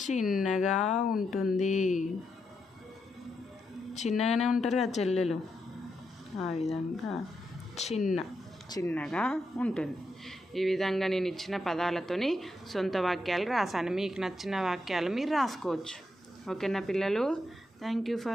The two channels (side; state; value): both; normal; correlation 0.83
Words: చిన్నగా ఉంటుంది. చిన్నగానే ఉంటారు కదా చెల్లెలు, ఆ విధంగా చిన్న. చిన్నగా ఉంటుంది. ఈ విధంగా నేను ఇచ్చిన పదాలతోని సొంత వాక్యాలు రాశాను. మీకు నచ్చిన వాక్యాలు మీరు రాసుకోవచ్చు. ఓకేనా పిల్లలు? Thank you